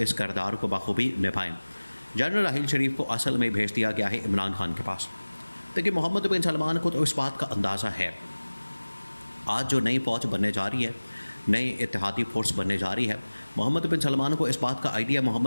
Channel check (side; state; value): both; inverted; correlation -1.00